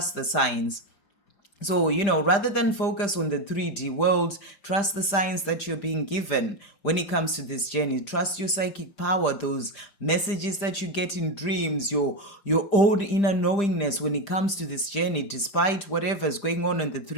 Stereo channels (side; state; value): right; late; 5.0 ms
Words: the signs. So, rather than focus on the 3D world, trust the signs that you're being given when it comes to this journey. Trust your psychic power, those messages that you get in dreams, your own inner knowingness when it comes to this journey, despite whatever is going on in the